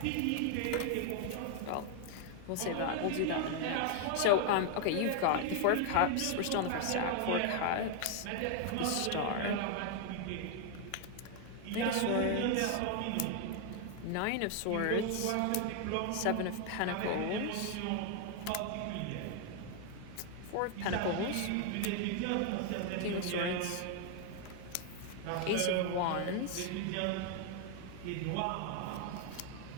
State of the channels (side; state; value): both; different; correlation 0.00